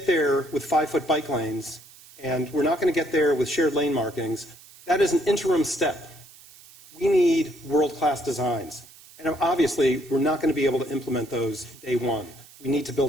there with 5-foot bike lanes, and we're not going to get there with shared lane markings. That is an interim step. We need world-class designs. And obviously, we're not going to be able to implement those day one. We need to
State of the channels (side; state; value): right; noise; hiss, 22 dB below the sound